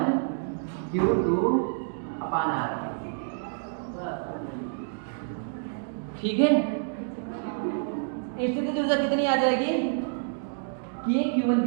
Q2 अपान R, ठीक है। स्थिति ऊर्जा कितनी आ जाएगी, K Q1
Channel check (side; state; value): left; silent; digital silence